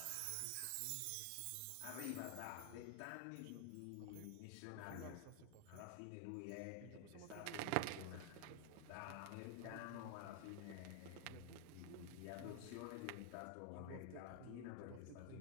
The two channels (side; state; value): both; different; correlation 0.00